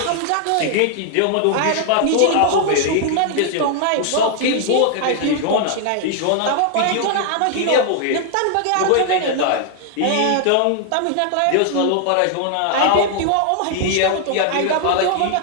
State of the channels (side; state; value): both; different; correlation 0.00